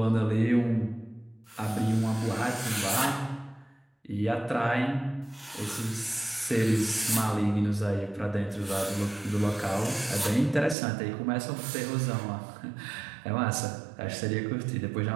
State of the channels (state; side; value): drops out; left; at 10.8 s